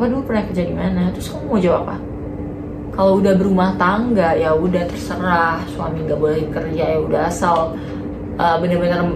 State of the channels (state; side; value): identical; both; correlation 1.00